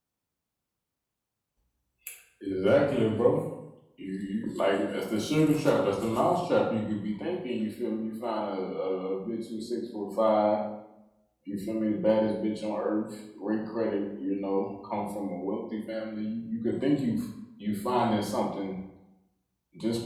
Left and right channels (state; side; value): identical; both; correlation 1.00